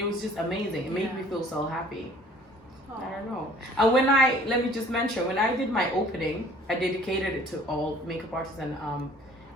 was just amazing. It made me feel so happy. I don't know. And when let me just mention, when I did my opening, I dedicated it to all makeup artists and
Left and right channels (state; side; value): normal; both; correlation 0.53